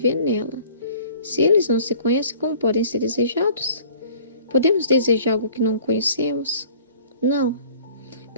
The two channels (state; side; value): inverted; both; correlation -0.50